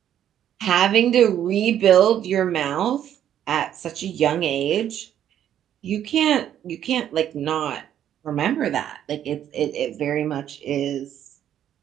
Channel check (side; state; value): left; quieter; 10.5 dB